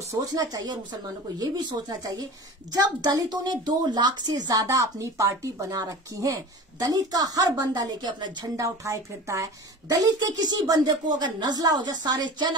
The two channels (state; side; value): normal; both; correlation 0.36